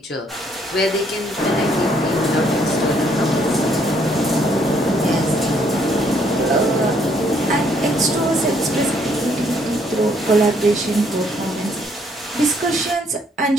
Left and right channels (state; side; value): normal; both; correlation 0.68